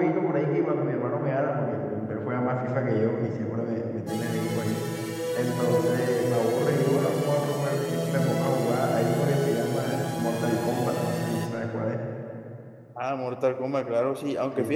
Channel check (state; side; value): identical; both; correlation 1.00